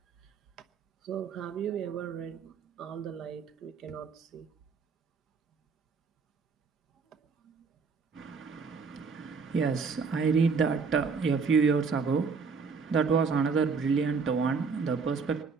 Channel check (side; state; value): left; quieter; 5.1 dB